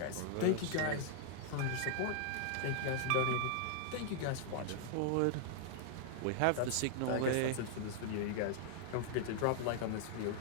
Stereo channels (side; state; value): both; different; correlation -0.01